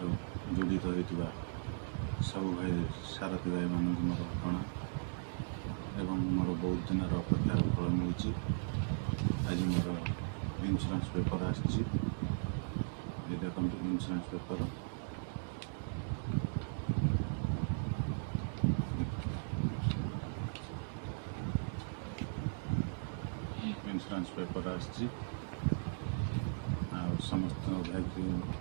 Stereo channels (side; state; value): left; silent; digital silence